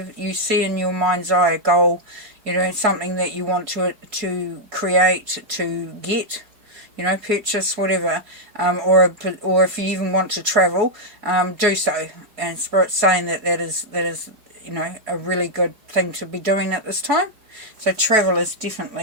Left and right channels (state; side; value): late; left; 4.9 ms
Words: see in your mind's eye, a goal, you know, something that you want to create, to get, you know, purchase, whatever, or if you even want to travel, do so. And Spirit's saying that is you know, a really good thing to be doing at this time. So travel is